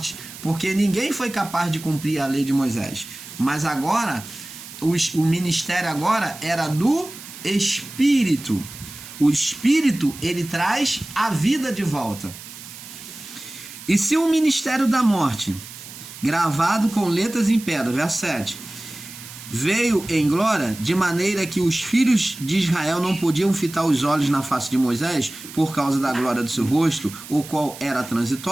porque ninguém foi capaz de cumprir a lei de Moisés. Mas agora, o ministério agora era do Espírito. O Espírito, ele traz a vida de volta. E se o ministério da morte, gravado com letras em pedra, verso 7, veio em glória, de maneira que os filhos de Israel não podiam fitar os olhos na face de Moisés, por causa da glória do seu rosto, o qual era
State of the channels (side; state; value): right; noise; hiss, 15 dB below the sound